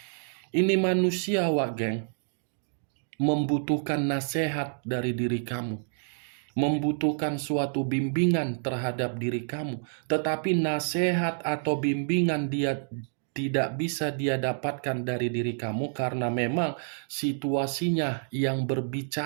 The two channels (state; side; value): silent; left; digital silence